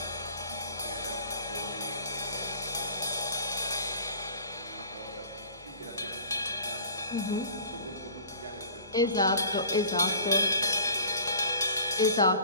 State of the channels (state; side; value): inverted; both; correlation -0.46